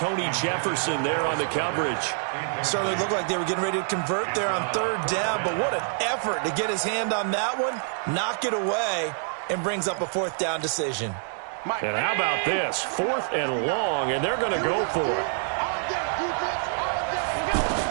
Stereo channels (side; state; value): left; silent; 61 dB below the other